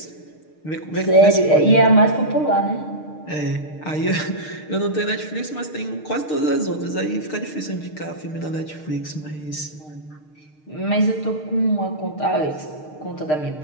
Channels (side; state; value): right; late; 6.6 ms